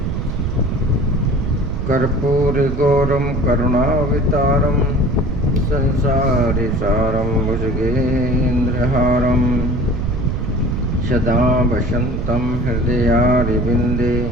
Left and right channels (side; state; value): right; noise; rumble, 3 dB below the sound